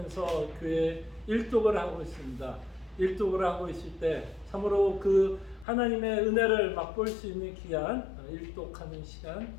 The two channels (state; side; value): drops out; right; at 5.7 s